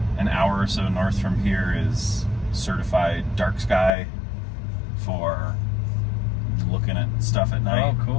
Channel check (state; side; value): drops out; right; at 3.9 s